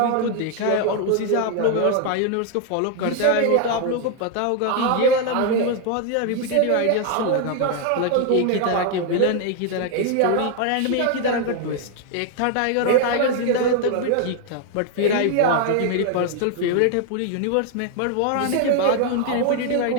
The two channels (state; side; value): different; both; correlation 0.00